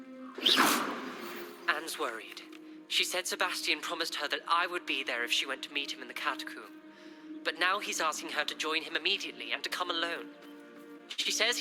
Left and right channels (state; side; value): identical; both; correlation 1.00